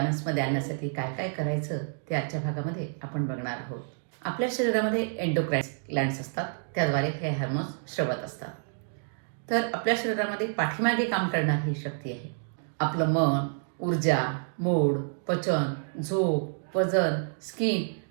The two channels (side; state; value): left; silent; digital silence